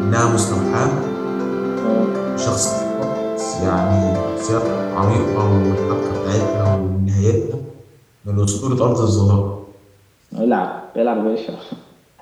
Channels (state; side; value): identical; both; correlation 1.00